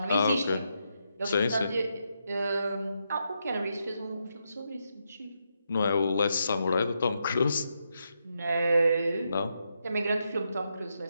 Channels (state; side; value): inverted; both; correlation -0.82